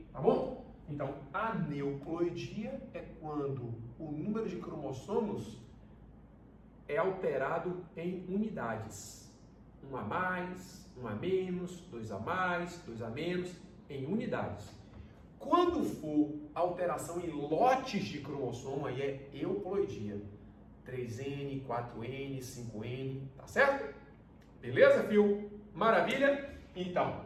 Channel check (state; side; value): identical; both; correlation 1.00